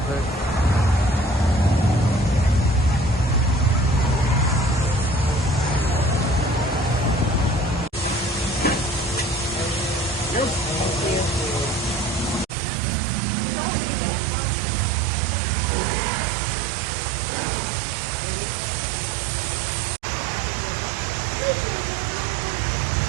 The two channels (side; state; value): left; drops out; at 12.5 s